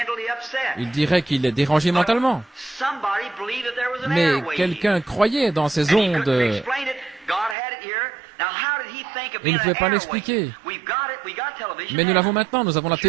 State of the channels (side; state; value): left; drops out; at 7.6 s